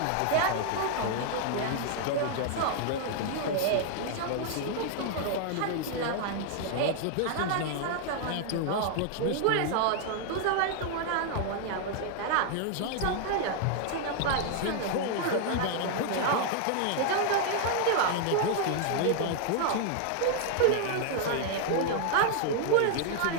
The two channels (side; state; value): both; different; correlation 0.00